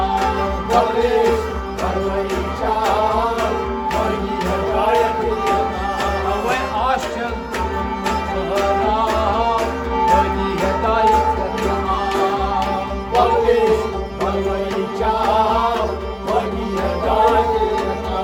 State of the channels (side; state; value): both; identical; correlation 1.00